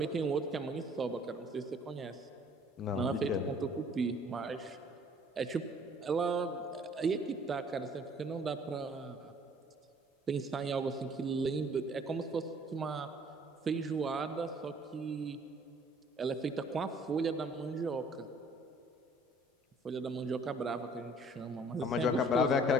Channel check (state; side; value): normal; both; correlation 0.56